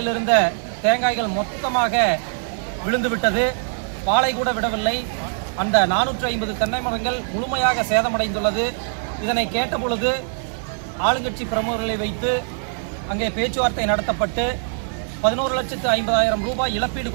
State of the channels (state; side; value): silent; left; digital silence